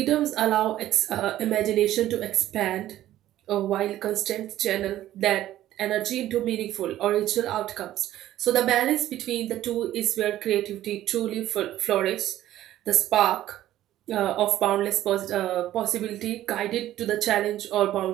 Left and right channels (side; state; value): left; quieter; 13.5 dB